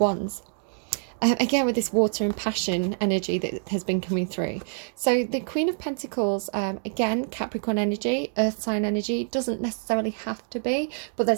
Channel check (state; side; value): silent; left; digital silence